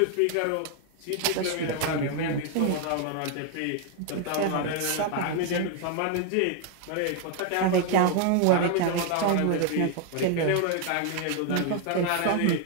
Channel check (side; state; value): both; different; correlation 0.00